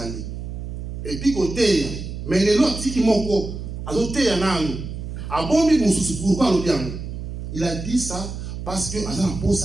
Et puis côté, mais les autres qui m'ont azoté un an. A bon mi mususu pourquoi le bien? Il a dit ça parce que azan pour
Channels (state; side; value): noise; right; hum, 7 dB below the sound